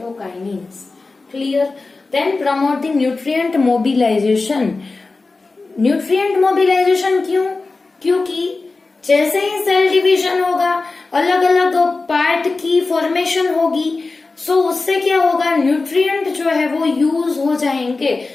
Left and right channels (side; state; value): right; quieter; 3.7 dB